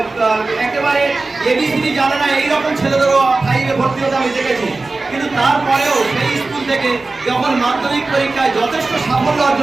একেবারে এবিসিডি জানে না এইরকম ছেলেদেরও 5-এ ভর্তি হতে আমি দেখেছি। কিন্তু তারপরেও সেই স্কুল থেকে যখন মাধ্যমিক পরীক্ষায় যথেষ্ট সাফল্য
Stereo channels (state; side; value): quieter; left; 3.5 dB